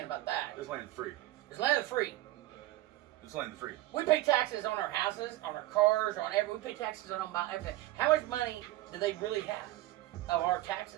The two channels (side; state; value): left; quieter; 16.6 dB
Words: about that. This land is free. This land is free. This land is free. We pay taxes on our houses, on our cars, on everything. We pay taxes on everything. How much money do they really have of our